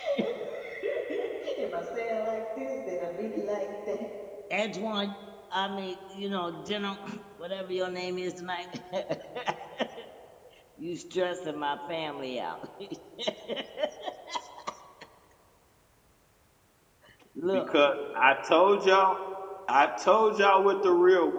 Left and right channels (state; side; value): identical; both; correlation 1.00